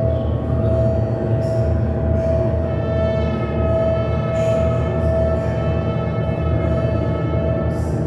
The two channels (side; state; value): both; identical; correlation 1.00